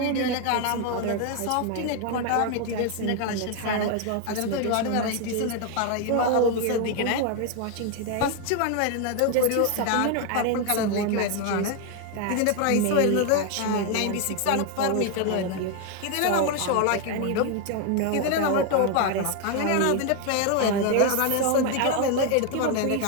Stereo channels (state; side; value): different; both; correlation 0.01